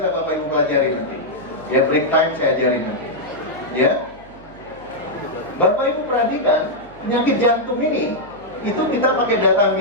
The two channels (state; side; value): noise; right; hum, 24 dB below the sound